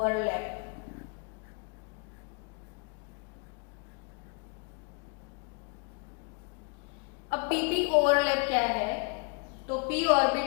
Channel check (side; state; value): right; quieter; 32.0 dB